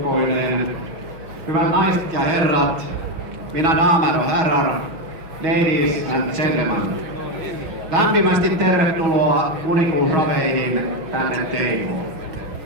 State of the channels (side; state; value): left; late; 6.3 ms